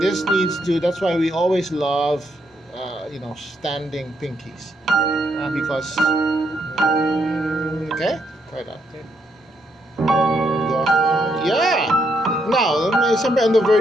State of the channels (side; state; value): both; normal; correlation 0.76